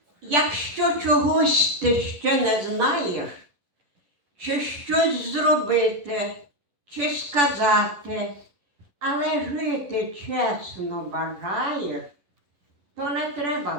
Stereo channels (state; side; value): late; left; 10 ms